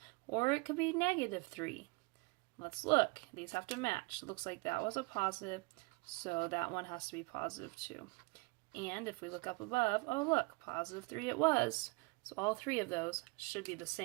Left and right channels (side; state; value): left; quieter; 27.4 dB